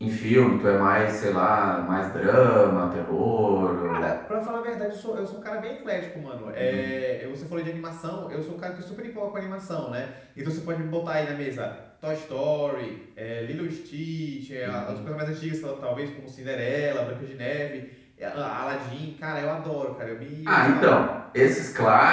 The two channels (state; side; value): identical; both; correlation 1.00